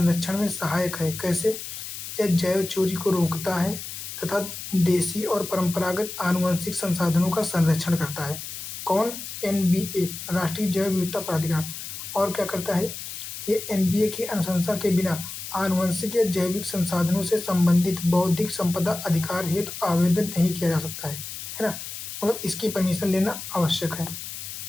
में सहायक है। कैसे? यह जैव चोरी को रोकता है तथा देसी और परंपरागत आनुवंशिक संसाधनों का संरक्षण करता है। कौन? एनबीए, राष्ट्रीय जैव विविधता प्राधिकरण। और क्या करता है? ये एनबीए की अनुशंसा के बिना आनुवंशिक या जैविक संसाधनों से संबंधित बौद्धिक संपदा अधिकार हेतु आवेदन नहीं किया जा सकता है ना, मतलब इसकी परमिशन लेना आवश्यक है।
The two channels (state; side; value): noise; left; hiss, 9 dB below the sound